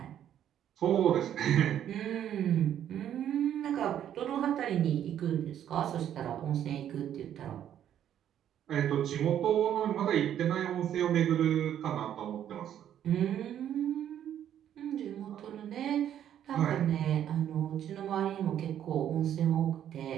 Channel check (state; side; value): quieter; left; 10.3 dB